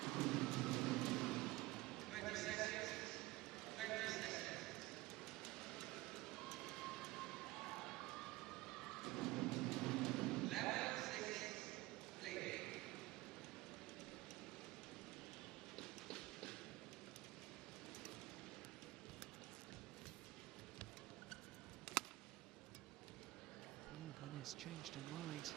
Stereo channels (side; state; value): left; quieter; 19.7 dB